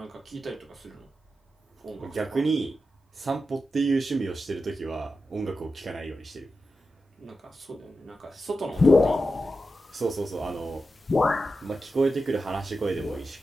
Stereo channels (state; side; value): normal; both; correlation 0.90